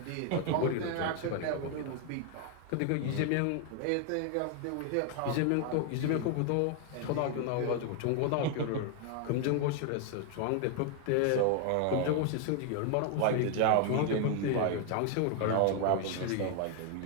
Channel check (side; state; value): both; different; correlation 0.00